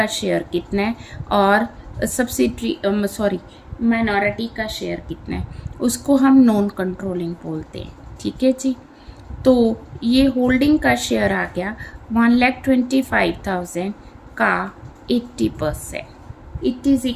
शेयर कितना है और सब्सिडरी माइनॉरिटी का शेयर कितना है, उसको हम नॉन कंट्रोलिंग बोलते हैं। ठीक है जी। तो ये होल्डिंग का शेयर आ गया 1,25,000 का 80%, it is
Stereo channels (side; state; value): both; identical; correlation 1.00